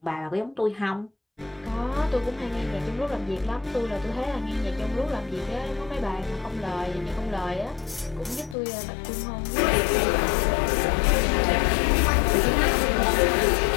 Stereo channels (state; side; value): drops out; right; at 8.6 s